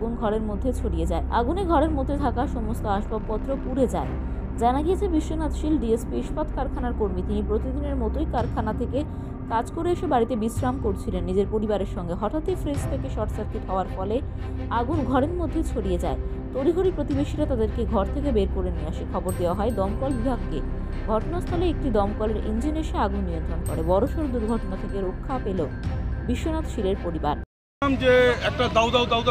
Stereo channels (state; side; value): identical; both; correlation 1.00